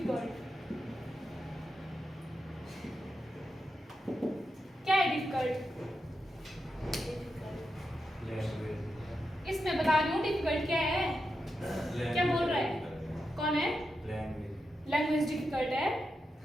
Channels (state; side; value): normal; both; correlation 0.87